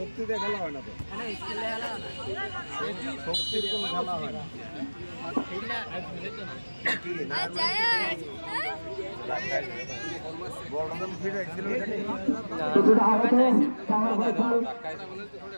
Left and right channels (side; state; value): both; inverted; correlation -1.00